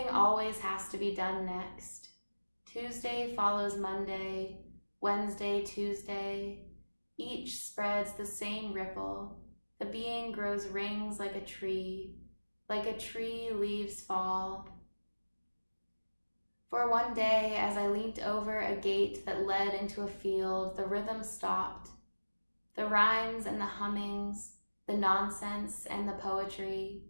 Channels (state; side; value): inverted; both; correlation -1.00